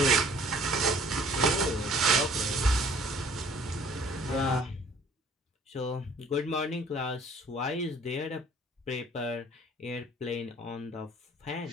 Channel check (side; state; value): both; normal; correlation 0.55